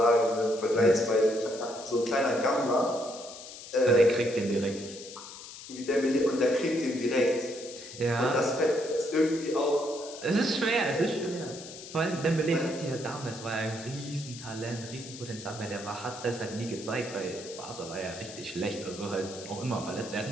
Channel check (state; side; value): noise; left; hiss, 14 dB below the sound